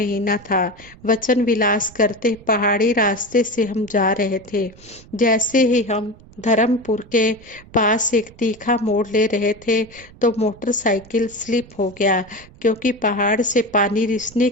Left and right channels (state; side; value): noise; right; rumble, 23 dB below the sound